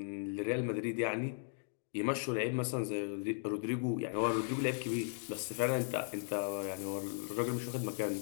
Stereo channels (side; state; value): right; silent; digital silence